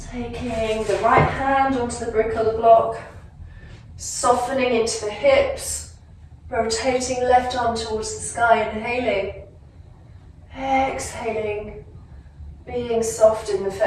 Taking the right hand onto the brick or the block, softening into the hips, rotating left arm towards the sky, inhaling, exhaling, being soft in the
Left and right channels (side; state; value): both; identical; correlation 1.00